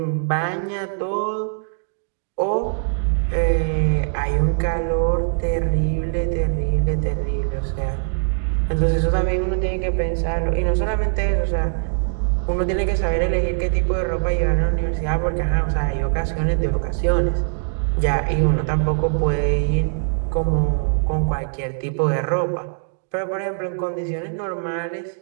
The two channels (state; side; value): silent; left; digital silence